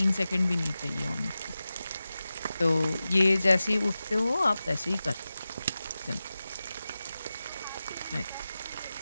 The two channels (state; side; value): inverted; both; correlation -0.94